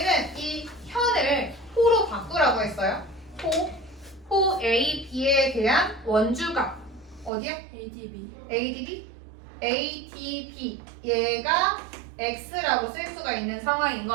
이 현을 호로 바꾸라고 했어요. 호 A, B에 대한 원주각. 어디야? ADB? ADB. 얘가 x라고 쓸 수가 있는 상황인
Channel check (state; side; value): drops out; left; at 7.3 s